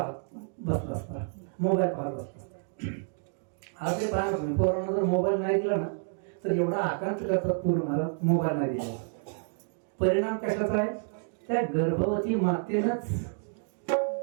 बसला असता, मोबाईल पाहत बसला असता। आज ते पाहत तुम्ही पोरांना जर मोबाईल नाही दिला ना तर एवढा आकांत करतात पूर्ण महाराज मोबाईल नाही दिला। परिणाम कशाचा आहे? त्या गर्भवती मातेनंच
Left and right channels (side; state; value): left; silent; 58 dB below the other